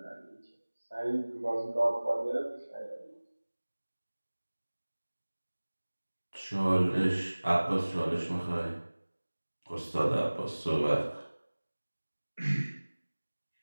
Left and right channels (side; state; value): both; inverted; correlation -1.00